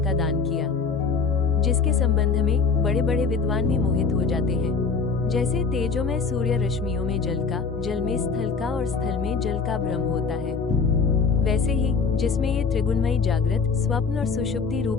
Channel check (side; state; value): right; quieter; 5.0 dB